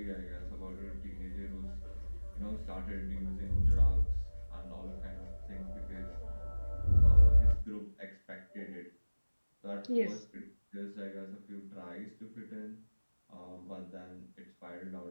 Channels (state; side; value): inverted; both; correlation -1.00